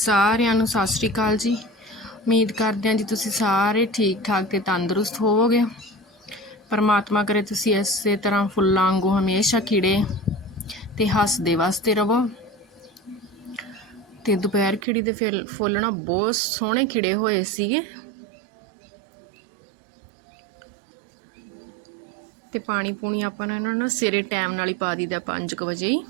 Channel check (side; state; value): left; drops out; at 14.9 s